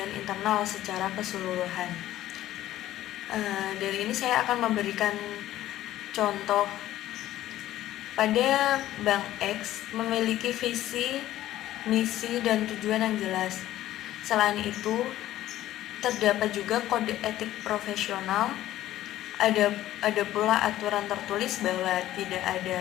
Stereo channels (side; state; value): right; quieter; 14.0 dB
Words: internal secara keseluruhan. Dari ini saya akan memberikan contoh. Pada Bank X memiliki visi, misi, dan tujuan yang jelas. Selain itu, terdapat juga kode etik profesional. Ada pula aturan tertulis bahwa tidak ada